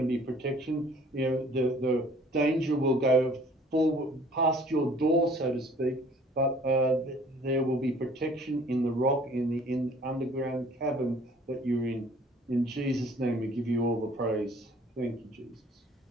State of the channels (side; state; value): both; normal; correlation 0.54